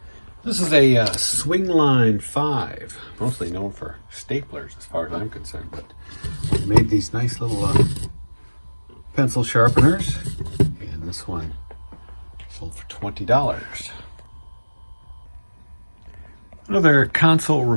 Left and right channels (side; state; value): both; inverted; correlation -1.00